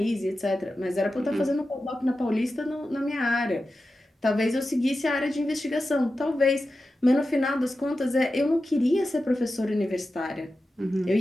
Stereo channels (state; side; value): normal; both; correlation 0.92